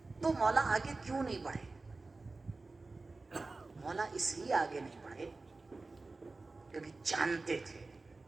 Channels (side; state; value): left; quieter; 3.5 dB